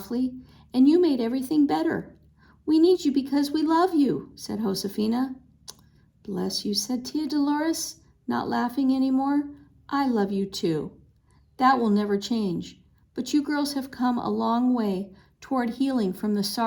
and you made everything better. We need you because we love you, said Josefina. Bless you, said Tia Dolores, not laughing anymore. I love you too. That will never change, but you girls have come a long way toward healing from the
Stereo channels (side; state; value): both; identical; correlation 1.00